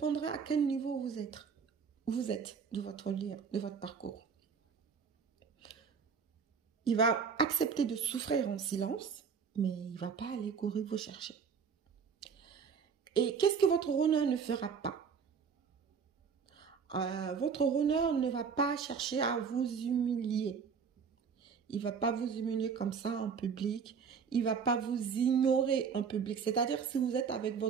à quel niveau vous êtes de votre lien, de votre parcours. Il va accepter de souffrir en silence, mais il ne va pas aller courir vous chercher. Et qu'est-ce que votre runner ne fera pas? Votre honneur ne va pas chercher à vous humilier. Il ne va pas vous humilier comme ça en public. Il ne va pas vous ignorer en public. C'est-à-dire, si vous êtes avec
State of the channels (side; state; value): left; quieter; 6.3 dB